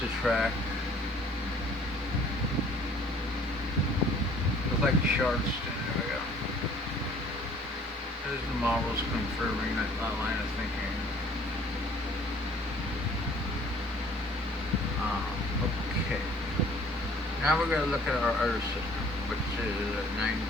the track. Looks like Charleston. There we go. There's the models confirming that line of thinking. Okay. Now we're going to look at our Earth system, which is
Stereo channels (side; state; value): both; normal; correlation 0.55